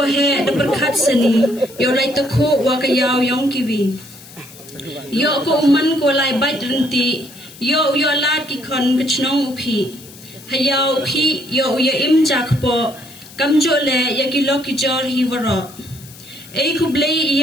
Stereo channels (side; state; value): left; noise; hiss, 20 dB below the sound